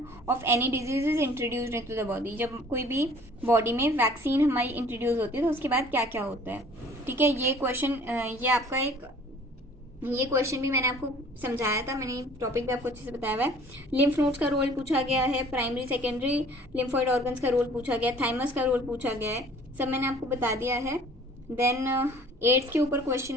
of any disease is introduced into the body। जब कोई भी बॉडी में वैक्सीन हमारी इंट्रोड्यूस होती है तो उसके बाद क्या क्या होता है, ठीक है। ये क्वेश्चन ये आपका ये क्वेश्चन भी मैंने आपको समझाया था, मैंने टॉपिक भी आपको अच्छे से बताया हुआ है। लिम्फ नोड्स का रोल पूछा गया है, प्राइमरी सेकेंडरी लिम्फोइड ऑर्गन्स का रोल पूछा गया है, थाइमस का रोल पूछा गया है, सब मैंने आपको बता दिया है। देन एड्स के ऊपर क्वेश्चन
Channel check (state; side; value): normal; both; correlation 0.52